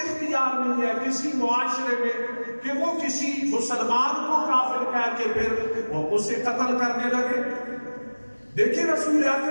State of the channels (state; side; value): inverted; both; correlation -1.00